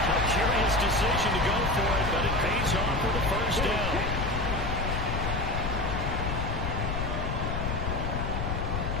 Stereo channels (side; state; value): left; noise; rumble, 2 dB below the sound